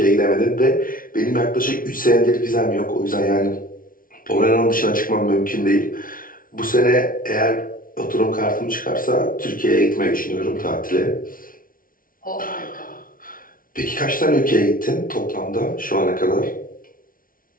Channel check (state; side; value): late; right; 0.41 ms